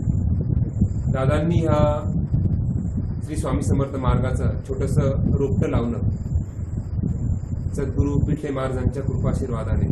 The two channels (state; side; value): identical; both; correlation 1.00